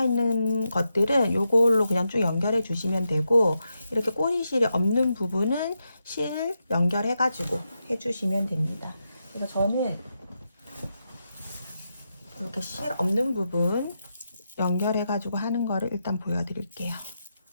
것들은 요걸로 그냥 쭉 연결해 주시면 되고, 이렇게 꼬리실이 없는 부분은 실 연결해가지고 해주시면 됩니다. 그래서 저는 이렇게 실 없는 부분 연결해가지고 하는 거를 일단 보여드릴게요.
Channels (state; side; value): inverted; both; correlation -0.86